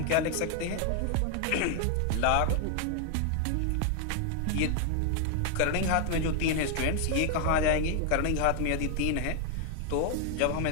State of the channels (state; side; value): different; both; correlation 0.00